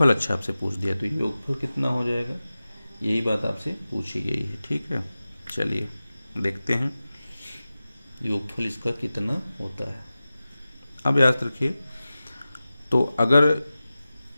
अच्छा आपसे पूछ दिया तो योगफल कितना हो जाएगा, यही बात आपसे पूछी गई है, ठीक है। चलिए देखते हैं योगफल इसका कितना होता है। अब याद रखिए, तो अगर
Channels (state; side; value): inverted; both; correlation -0.95